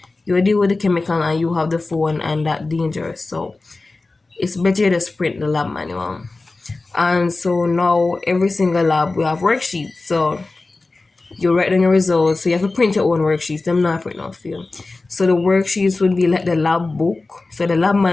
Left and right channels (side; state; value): right; quieter; 3.4 dB